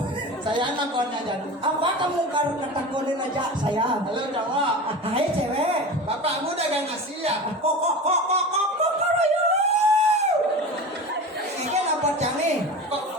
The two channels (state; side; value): normal; both; correlation 0.31